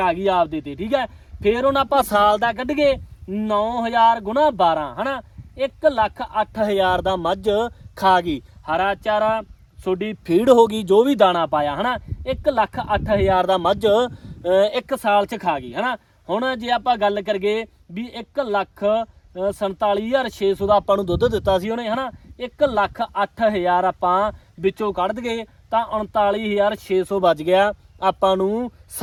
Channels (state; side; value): identical; both; correlation 1.00